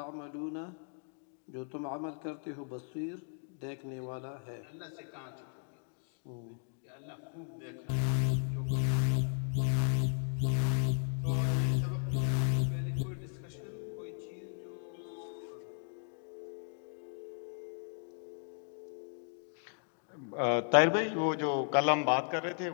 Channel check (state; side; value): silent; right; 54 dB below the other